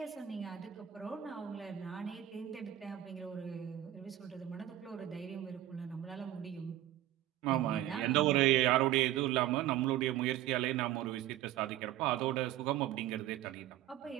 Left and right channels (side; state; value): left; quieter; 13.2 dB